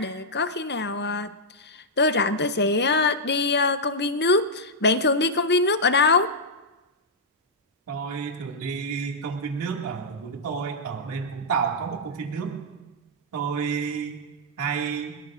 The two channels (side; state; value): both; normal; correlation -0.08